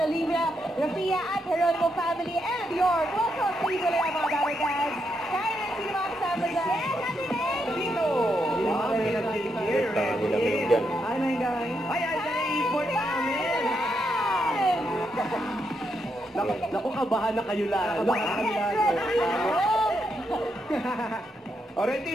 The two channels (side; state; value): both; normal; correlation 0.81